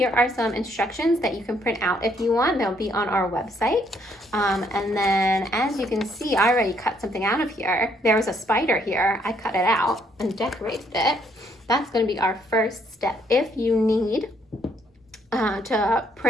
are some instructions that you can print out if you want. They'll be on our website. And then as you can see, I already cut something out of here. There was a spider here. I cut it out and decorated it. That's gonna be our first step. If you need to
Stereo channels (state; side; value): normal; both; correlation 0.69